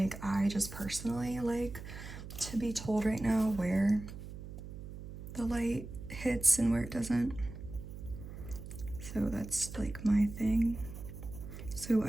I just personally like to be told right now where the light hits and where it doesn't. So that's like my thing. So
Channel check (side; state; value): right; noise; hum, 11 dB below the sound